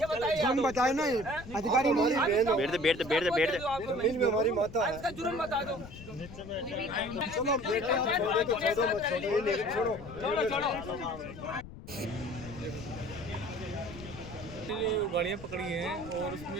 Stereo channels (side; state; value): left; noise; rumble, 14 dB below the sound